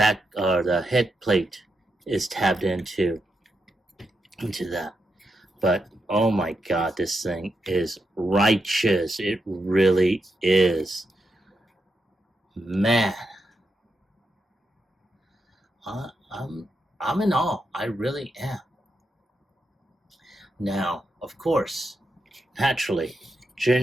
or the head plate is tabbed into that. But oh my god, this thing is righteous. It really is. Man, I'm in awe. I really am. Now, of course, naturally,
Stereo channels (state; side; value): normal; both; correlation 0.85